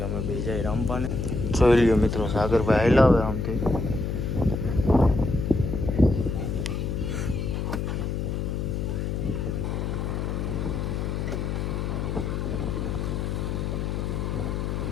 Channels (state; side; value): noise; left; hum, 1 dB below the sound